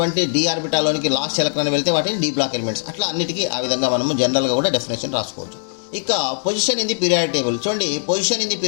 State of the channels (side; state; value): right; silent; 63 dB below the other